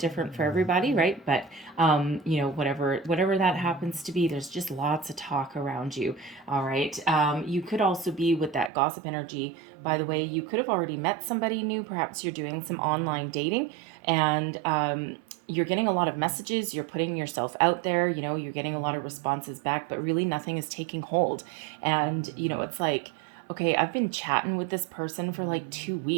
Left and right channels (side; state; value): left; drops out; at 8.7 s